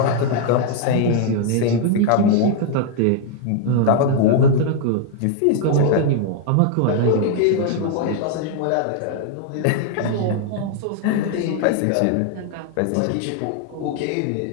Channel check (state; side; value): different; both; correlation 0.00